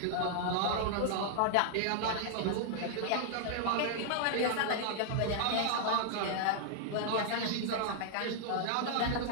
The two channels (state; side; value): different; both; correlation 0.00